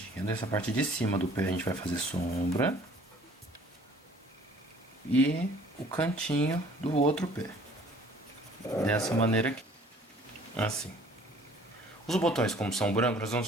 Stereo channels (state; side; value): normal; both; correlation 0.54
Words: Essa parte de cima do pé a gente vai fazer sombra. E o cantinho do outro pé. Dessa maneira aqui. Assim. Os botões, como são brancos, nós vamos